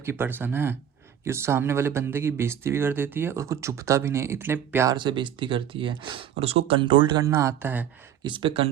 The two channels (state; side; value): quieter; left; 9.6 dB